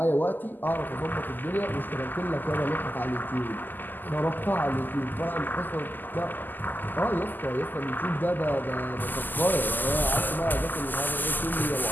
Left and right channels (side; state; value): right; late; 0.088 ms